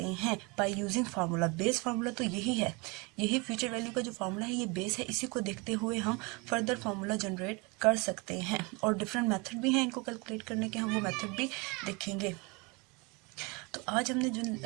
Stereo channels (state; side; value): quieter; left; 28.1 dB